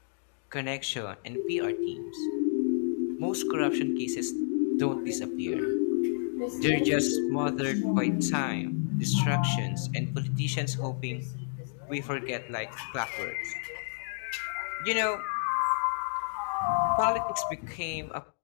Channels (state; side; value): silent; right; digital silence